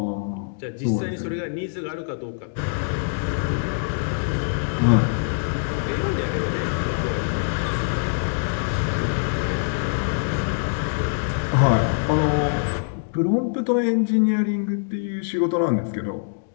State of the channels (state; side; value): silent; right; digital silence